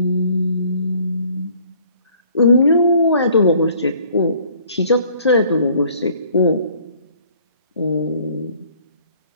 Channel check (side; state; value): both; inverted; correlation -0.58